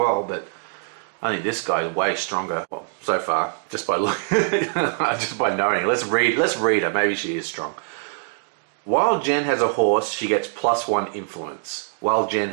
but I think this guy is way stronger. Well, so far, just by knowing. Let's read her. Maybe she is strong. While Jen has a horse, she gets +1 influence. While Jen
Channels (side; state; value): left; silent; 63 dB below the other